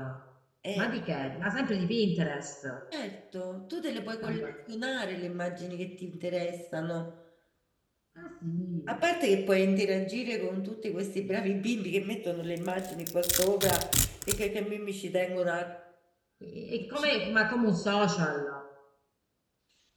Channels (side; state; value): both; identical; correlation 1.00